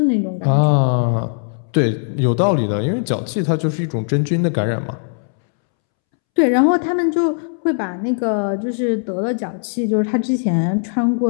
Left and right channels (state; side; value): silent; right; 67 dB below the other